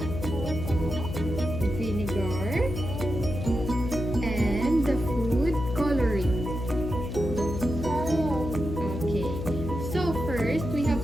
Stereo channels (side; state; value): left; noise; hum, 5 dB below the sound